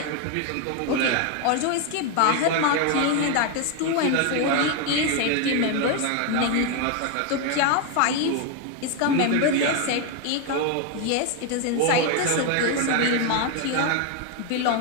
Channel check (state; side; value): different; both; correlation 0.01